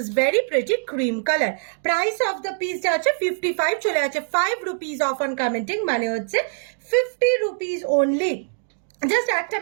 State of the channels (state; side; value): silent; left; digital silence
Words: very pretty cream color. Price of the piece যাচ্ছে 55, চলে যাচ্ছে 5 rupees off on commenting, মানে হচ্ছে 50 rupees only. জাস্ট একটা